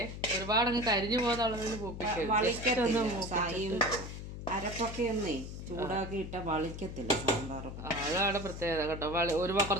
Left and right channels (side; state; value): left; noise; hum, 9 dB below the sound